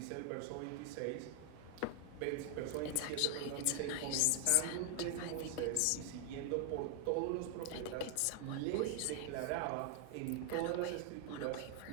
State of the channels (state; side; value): different; both; correlation 0.00